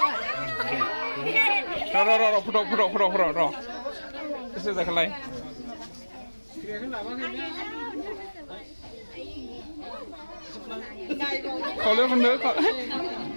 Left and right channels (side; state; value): both; inverted; correlation -1.00